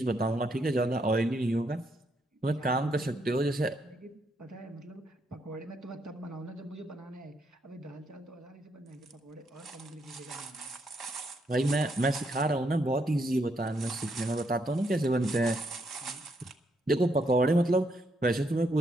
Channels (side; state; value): both; normal; correlation 0.76